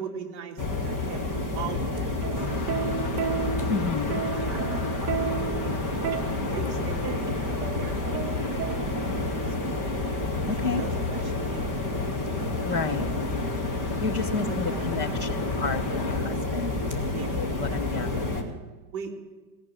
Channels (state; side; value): late; left; 5.1 ms